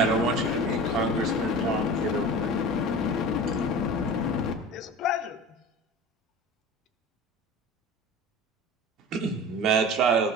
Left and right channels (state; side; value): normal; both; correlation 0.35